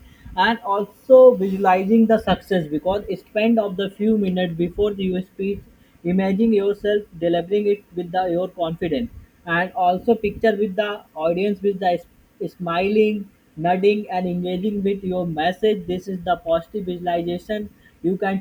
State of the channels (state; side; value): identical; both; correlation 1.00